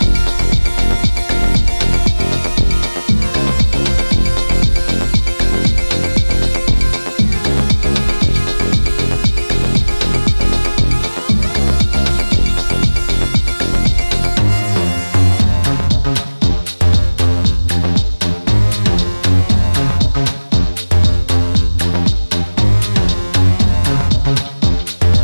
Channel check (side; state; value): both; inverted; correlation -1.00